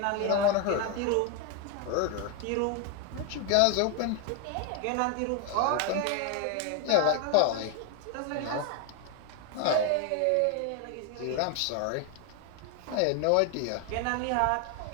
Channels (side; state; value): both; different; correlation 0.01